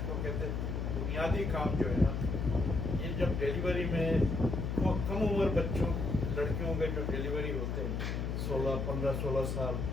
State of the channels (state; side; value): noise; left; hum, 1 dB below the sound